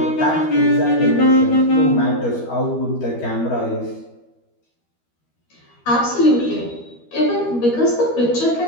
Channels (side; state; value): right; late; 13 ms